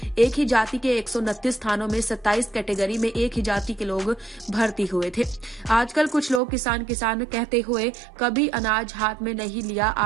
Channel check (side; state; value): left; drops out; at 6.4 s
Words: एक ही जाति के 129 स्थानों में 27 कैटेगरी में एक ही जाति के लोग भर्ती हुए थे। आजकल कुछ लोग किसान किसान कहते हुए कभी अनाज हाथ में नहीं लिया,